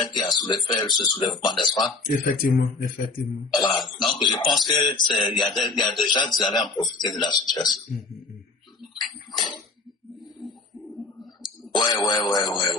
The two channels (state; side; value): quieter; right; 3.7 dB